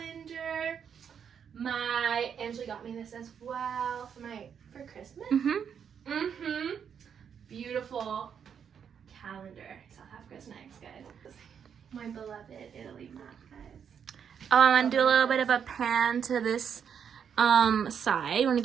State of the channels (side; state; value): left; quieter; 7.6 dB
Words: Angela got me this as well for Christmas. Beautiful calendar. South Africa's next, guys. My beloved Italy map, guys. Oh, I want to do a little bit of a pan to this side. Want to